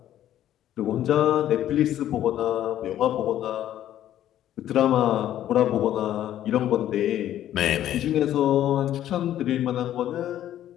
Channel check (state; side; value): quieter; right; 11.9 dB